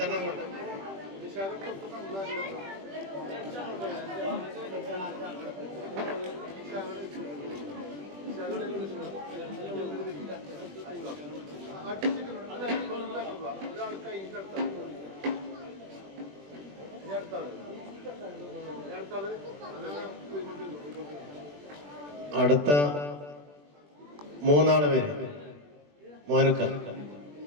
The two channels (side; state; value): left; late; 20 ms